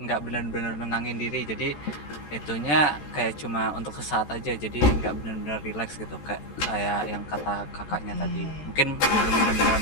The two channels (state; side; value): late; right; 13 ms